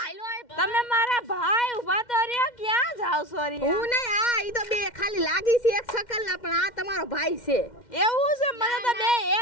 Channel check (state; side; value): late; right; 2.1 ms